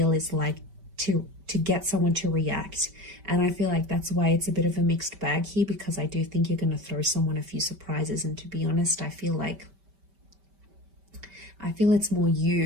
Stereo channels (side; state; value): left; late; 5.1 ms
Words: is like to get someone to react. And I feel like that's why it's a bit of a mixed bag here, because I do think you're going to throw someone a few surprises. And to be honest, I feel it's more